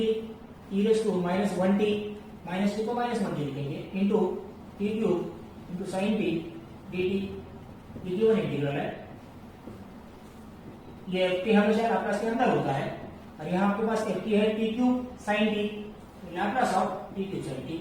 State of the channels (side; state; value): both; identical; correlation 1.00